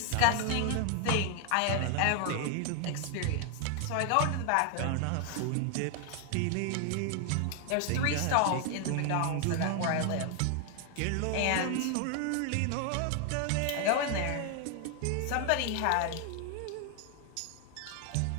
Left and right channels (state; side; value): different; both; correlation 0.00